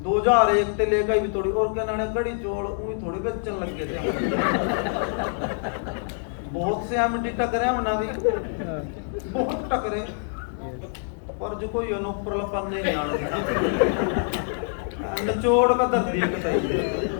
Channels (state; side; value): silent; right; 61 dB below the other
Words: 2001 से लेकर भी थोड़ी और क्या नाने कड़ी चोल उही थोड़ी बेचन लग गए थे। बहुत से एमडी टकरे हमने भी, बहुत टकरे, पर जो कोई ऊपर लपन नहीं आना निचोड़ का धरती है कतई।